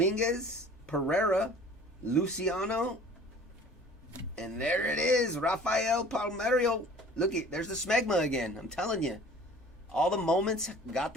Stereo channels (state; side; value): normal; both; correlation 0.47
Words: Pereira, Luciano, and there it is, Rafael Palmeiro. Look it, there's the smegma again. I'm telling you, all the moments got